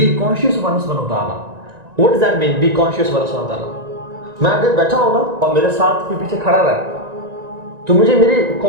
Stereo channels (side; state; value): left; late; 1.9 ms